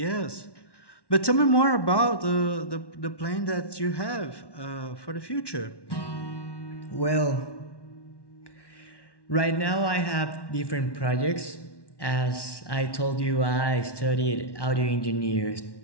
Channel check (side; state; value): right; late; 1.1 ms